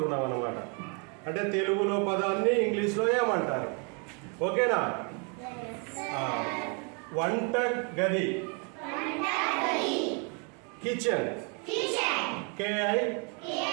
అన్నమాట. అంటే తెలుగులో పదాన్ని ఇంగ్లీష్లో ఏమంటారు? ఓకేనా? వంట గది, కిచెన్, KITCHEN,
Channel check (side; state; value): left; quieter; 36.1 dB